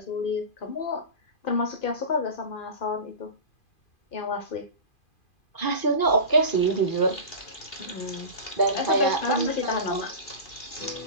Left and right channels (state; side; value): late; right; 2.4 ms